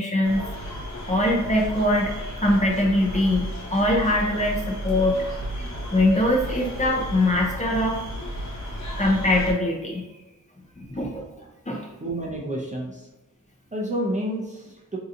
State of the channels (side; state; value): both; normal; correlation 0.57